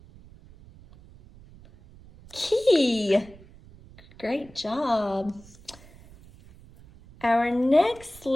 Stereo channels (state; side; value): noise; right; rumble, 23 dB below the sound